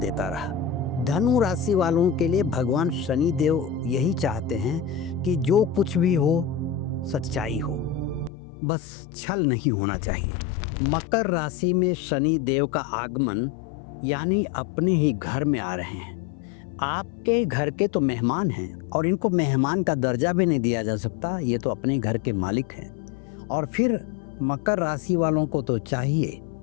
रहा। धनु राशि वालों के लिए भगवान शनि देव यही चाहते हैं कि जो कुछ भी हो सच्चाई हो, बस छल नहीं होना चाहिए। मकर राशि में शनि देव का आगमन यानी अपने ही घर में आ रहे हैं। आपके घर के तो मेहमान हैं और इनको मेहमान का दर्जा भी नहीं दिया जा सकता, ये तो अपने घर के मालिक हैं। और फिर मकर राशि वालों को तो चाहिए,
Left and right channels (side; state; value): right; drops out; at 8.3 s